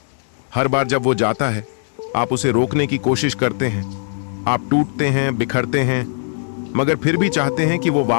हर बार जब वो जाता है, आप उसे रोकने की कोशिश करते हैं। आप टूटते हैं, बिखरते हैं, मगर फिर भी चाहते हैं कि वो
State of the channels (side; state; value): right; silent; digital silence